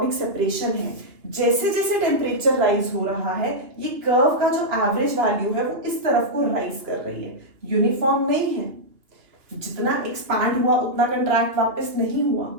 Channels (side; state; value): left; late; 2.8 ms